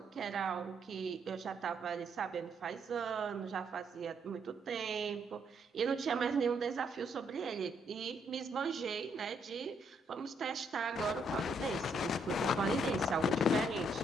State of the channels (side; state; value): both; normal; correlation 0.73